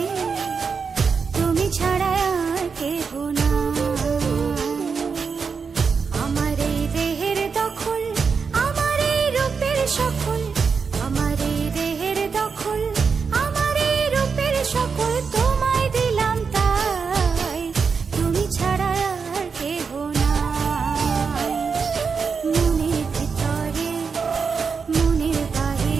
তুমি ছাড়া আর কেহ নাই। আমার এই দেহের দখল, আমার এই রূপের সকল, আমার এই দেহের দখল, আমার এই রূপের সকল তোমায় দিলাম তাই, তুমি ছাড়া আর কেহ নাই। মনের ভিতরে মনের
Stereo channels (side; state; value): left; quieter; 5.5 dB